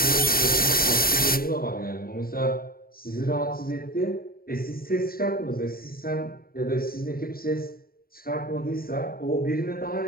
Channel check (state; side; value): late; right; 0.43 ms